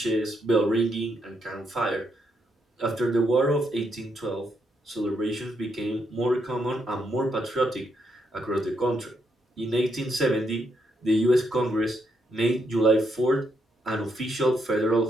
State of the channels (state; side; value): normal; both; correlation 0.78